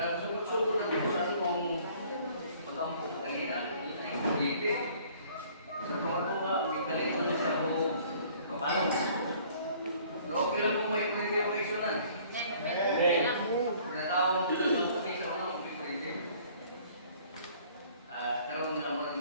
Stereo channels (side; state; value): both; inverted; correlation -0.55